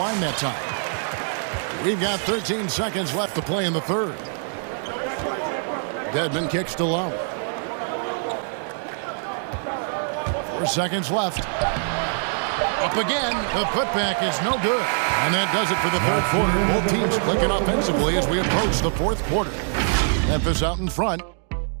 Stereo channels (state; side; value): silent; left; 63 dB below the other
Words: that time. We've got 13 seconds left to play in the third. Dedmon kicks to Lowry. 4 seconds left. Up again. The putback is no good. And that does it for the third quarter. Both teams clicking offensively as we approach the fourth quarter. Memphis out in front.